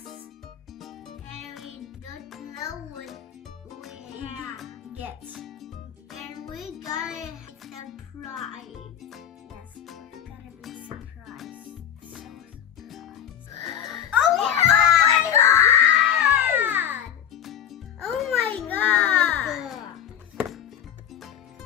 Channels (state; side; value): quieter; right; 9.5 dB